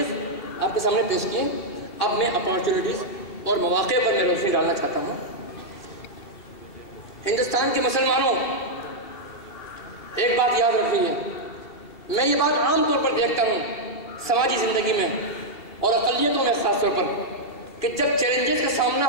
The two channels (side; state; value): right; late; 2.7 ms